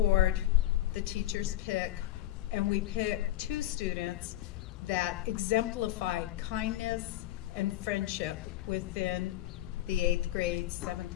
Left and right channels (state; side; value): quieter; right; 14.2 dB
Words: the teachers pick, and we pick 2 students that exemplified kindness and friendship within the 8th grade, 7th